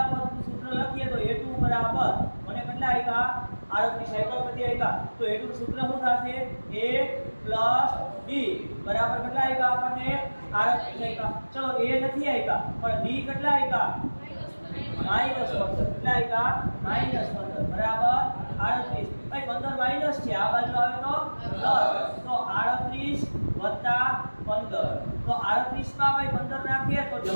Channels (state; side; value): inverted; both; correlation -1.00